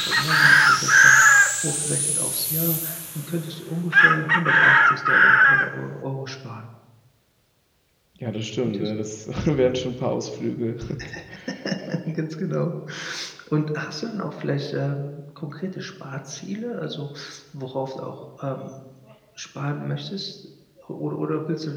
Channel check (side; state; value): both; identical; correlation 1.00